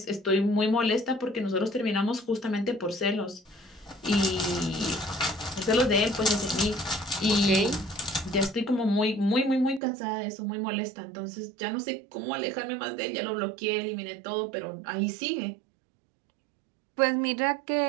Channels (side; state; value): left; drops out; at 9.8 s